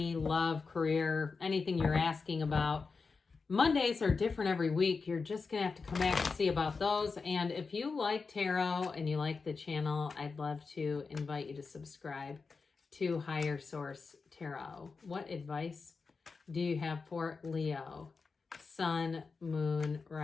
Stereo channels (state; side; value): quieter; right; 4.6 dB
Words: love, career, anything you're asking about. Mondays are different every week. You're just going to have to come back and see about those. And if you like tarot and you like the channel, I'd love to invite you to subscribe to Higher Source Tarot. What advice do you have for Leo? Sun, Moon,